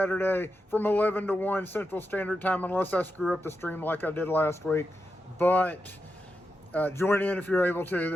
from 11 to 1 Central Standard Time, unless I screw up the stream like I did last week. But join in if you're able to.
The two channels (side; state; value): both; normal; correlation 0.88